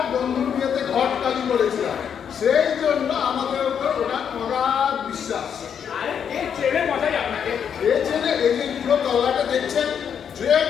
বন্ধুর বিয়েতে ঘটকালি করেছিলাম, সেই জন্য আমাদের উপর ওনার অগাধ বিশ্বাস। আরে কে চেনে মশাই আপনাকে? এ ছেলে এই যে পুরো তলাটা দেখছেন, যে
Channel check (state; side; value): quieter; right; 7.9 dB